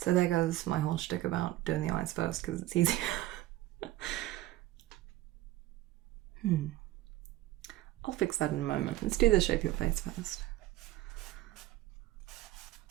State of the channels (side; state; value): left; quieter; 15.8 dB